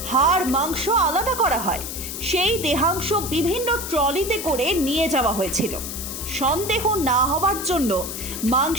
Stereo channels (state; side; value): noise; left; hiss, 7 dB below the sound